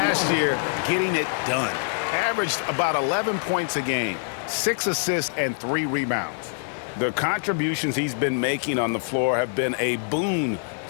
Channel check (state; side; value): silent; right; digital silence